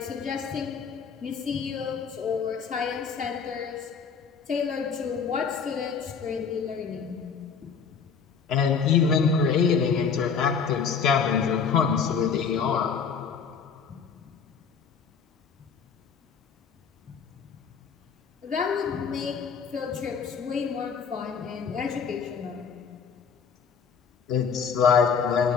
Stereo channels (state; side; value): quieter; right; 6.3 dB